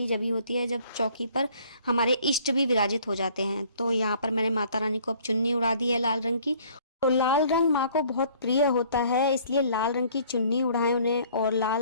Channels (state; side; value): inverted; both; correlation -0.57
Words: जब ही होती है जब चौकी पर हमारे इष्ट भी विराजित हो जाते हैं। तो यहाँ पर मैंने माता रानी को अब चुन्नी उड़ा दी है लाल रंग की। तो लाल रंग माँ को बहुत प्रिय होता है, इसलिए लाल रंग की चुन्नी उड़ाएं उन्हें और